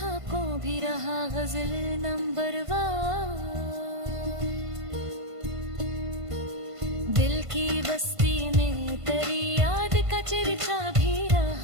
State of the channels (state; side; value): late; left; 1.5 ms